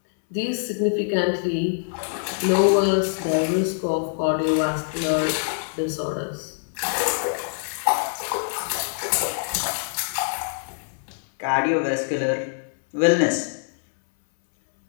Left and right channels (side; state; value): right; silent; 62 dB below the other